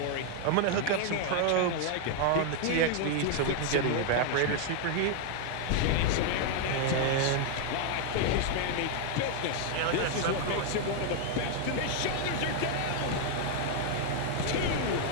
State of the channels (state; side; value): different; both; correlation 0.00